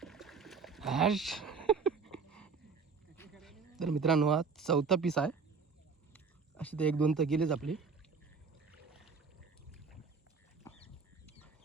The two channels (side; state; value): left; quieter; 5.2 dB